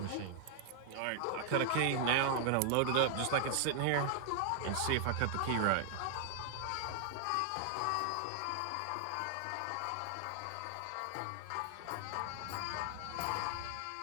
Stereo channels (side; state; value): both; different; correlation 0.00